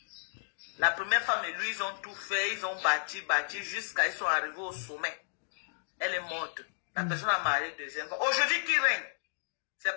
La première femme et lui, ils ont tout fait, ils ont bâti jusqu'à ils sont arrivés au sommet. Elle est morte. La personne a marié la deuxième femme. Aujourd'hui, qui règne? C'est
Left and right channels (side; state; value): right; silent; digital silence